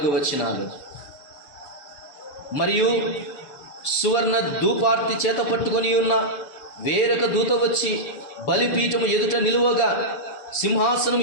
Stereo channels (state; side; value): late; right; 6.8 ms